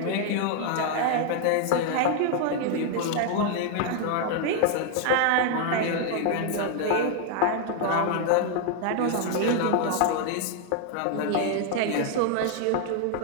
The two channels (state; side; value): different; both; correlation 0.00